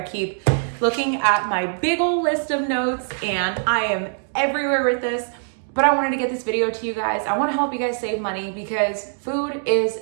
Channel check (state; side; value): silent; left; digital silence